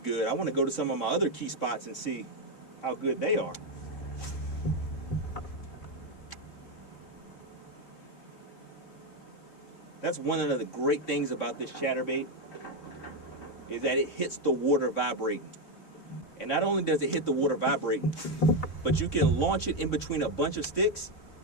I wanna go to some of my other key spots and see how good they are. That's one of the great things about this chatterbait, is that it hits the water vibrating. And not only does it hit the water vibrating, but you can launch it in between a bunch of sticks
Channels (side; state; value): right; late; 3.6 ms